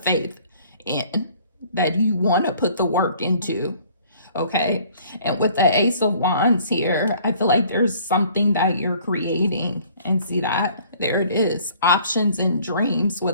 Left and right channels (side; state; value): both; inverted; correlation -0.56